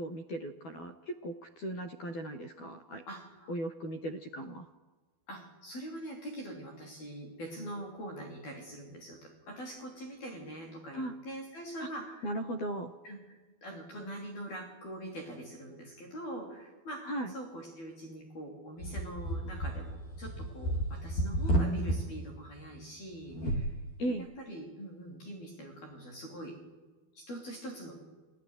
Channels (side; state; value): right; late; 12 ms